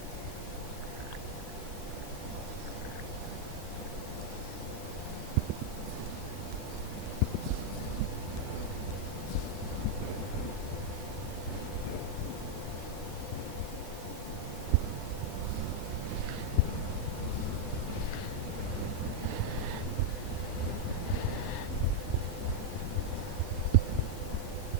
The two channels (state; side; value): late; right; 11 ms